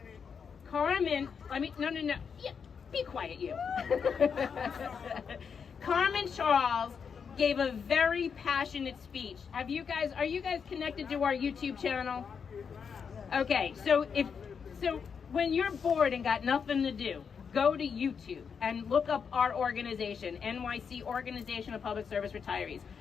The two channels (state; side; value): quieter; right; 6.4 dB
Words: Carmen, no. Yeah, be quiet, you. Carmen Charles gave a very passionate speech. Are you guys connected to our YouTube channel? Okay, so when you're bored and got nothing to do, go to YouTube and look up our organization, NYC Organization of Public Service Retirees.